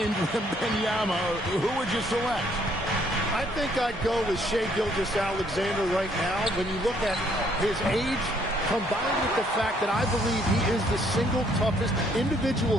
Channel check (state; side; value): normal; both; correlation 0.66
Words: Wembanyama, who would you select? I think I'd go with Shai Gilgeous-Alexander right now. When you look at his age, combined with the fact that I believe he is the single toughest